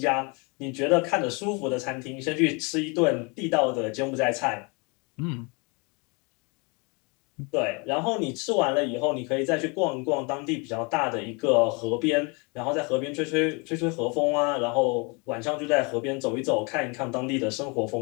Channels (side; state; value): right; quieter; 31.0 dB